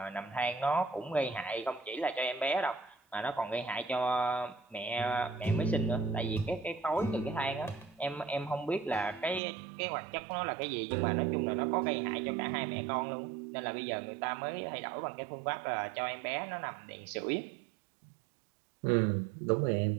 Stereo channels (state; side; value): drops out; left; at 9.4 s